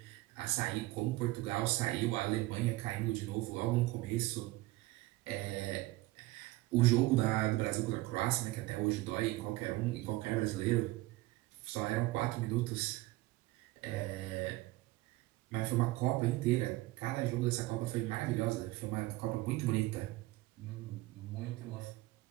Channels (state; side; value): quieter; left; 19.3 dB